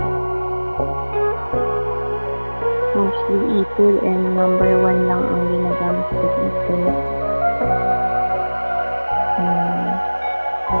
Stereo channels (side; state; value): both; inverted; correlation -1.00